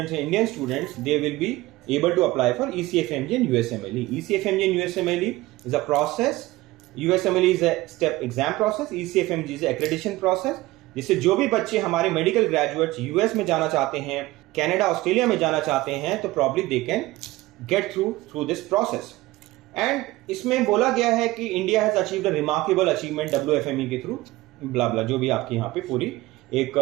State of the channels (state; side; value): quieter; left; 18.6 dB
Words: हैं, Indian students, they will be able to apply for ECFMG and USMLE. ECFMG and USMLE is a process. USMLE is a step exam process. ECFMG is a accreditation process. जिससे जो भी बच्चे हमारे मेडिकल ग्रेजुएट्स यूएस में जाना चाहते हैं, Canada, Australia में जाना चाहते हैं, तो probably they can get through this process. And इसमें बोला गया है कि India has achieved a remarkable achievement WFME के थ्रू, ब्ला ब्ला, जो भी आपकी यहाँ पे पूरी एक